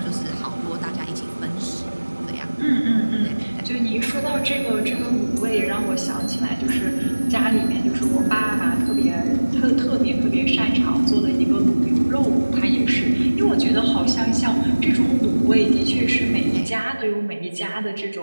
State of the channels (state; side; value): inverted; both; correlation -1.00